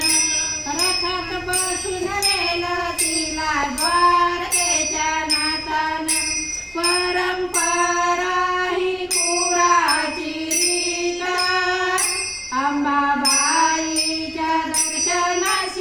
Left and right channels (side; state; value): both; identical; correlation 1.00